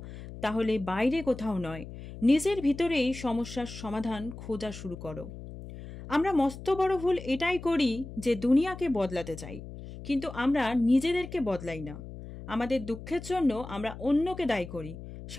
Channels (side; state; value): left; noise; hum, 12 dB below the sound